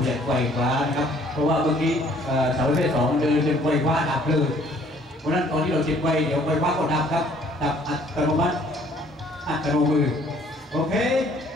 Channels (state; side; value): normal; both; correlation 0.59